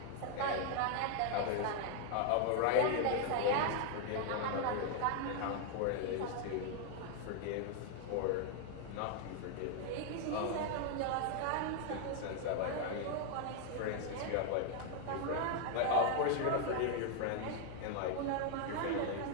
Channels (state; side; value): different; both; correlation 0.00